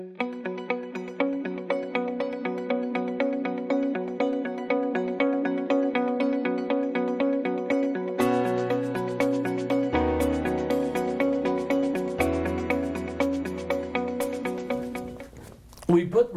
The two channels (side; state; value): both; identical; correlation 1.00